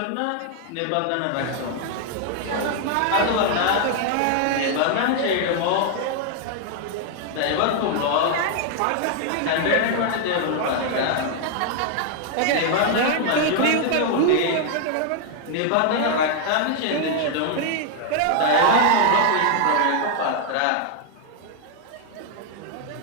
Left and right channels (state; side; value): different; both; correlation 0.00